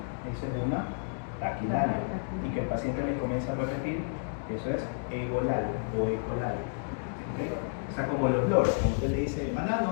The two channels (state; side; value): silent; right; digital silence